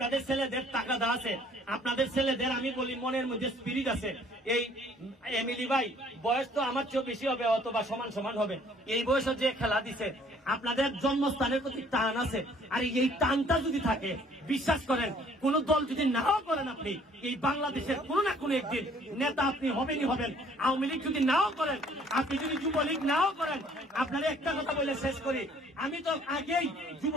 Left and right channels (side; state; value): both; normal; correlation 0.58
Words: ছেলেদের টাকা দেওয়া আছে, আপনাদের ছেলেদের আমি বলি মনের মধ্যে স্পিরিট আছে। এই এমিলি ভাই বয়স তো আমার চেয়েও বেশি হবে, অথবা সমান সমান হবে। এই বয়সে যে খেলা দিছে, আপনাদের জন্মস্থানের প্রতি টান আছে, আর এই টানটা যদি থাকে, বিশ্বাস করেন কোন দল যদি নাও করেন আপনি, এই বাংলাদেশের কোনো না কোনো একদিন নেতা আপনি হবেনই হবেন। আওয়ামী লীগ যদি নাও করেন, আপনি যদি যুবলীগ নাও করেন, আপনারা একটা কথা বলে শেষ করি, আমি তো আগেই